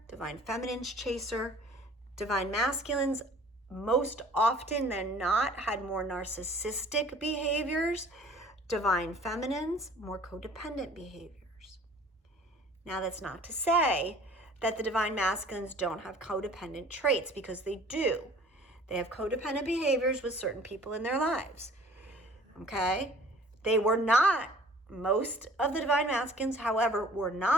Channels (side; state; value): both; normal; correlation 0.50